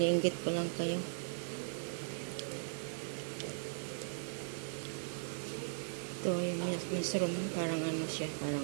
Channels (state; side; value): silent; left; digital silence